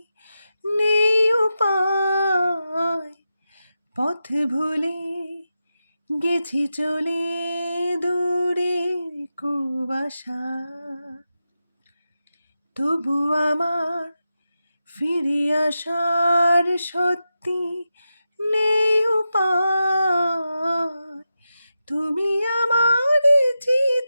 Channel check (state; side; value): inverted; both; correlation -0.90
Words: নেই উপায়। পথ ভুলে গেছি চলে দূরের কুয়াশা, তবু আমার ফিরে আসার সত্যি নেই উপায়। তুমি আমার